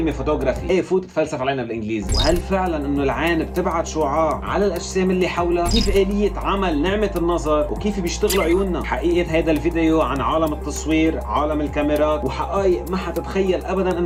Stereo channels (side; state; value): both; identical; correlation 1.00